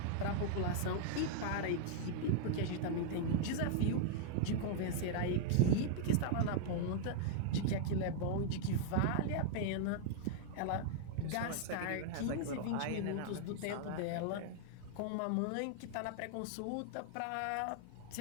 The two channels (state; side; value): different; both; correlation 0.00